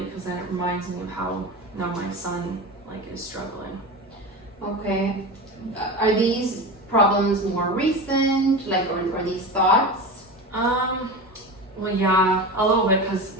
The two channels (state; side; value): normal; both; correlation 0.27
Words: because then it reminds me of how now my son is struggling. Okay. Are these problems more recent, or these thoughts? Well, yeah, a little bit because